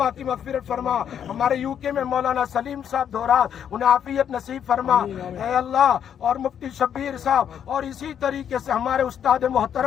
کی مغفرت فرما. ہمارے یو کے میں مولانا سلیم صاحب دھورات, انہیں عافیت نصیب فرما اے اللہ, اور مفتی شبیر صاحب, اور اسی طریقے سے ہمارے استاد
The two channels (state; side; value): quieter; right; 8.8 dB